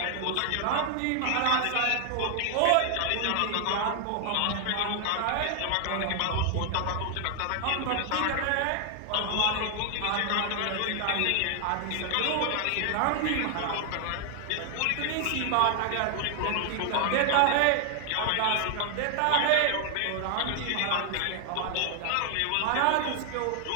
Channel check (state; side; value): different; both; correlation 0.00